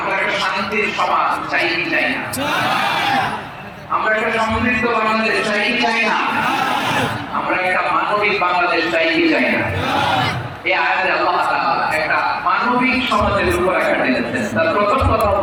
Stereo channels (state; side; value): identical; both; correlation 1.00